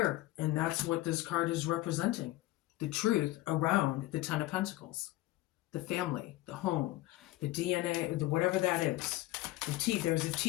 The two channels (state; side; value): quieter; right; 17.2 dB